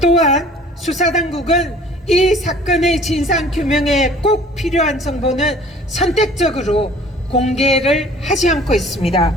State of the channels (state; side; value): normal; both; correlation 0.50